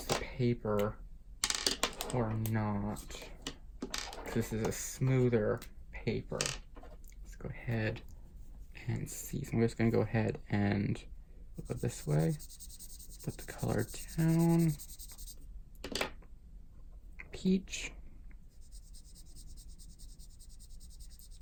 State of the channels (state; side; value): identical; both; correlation 1.00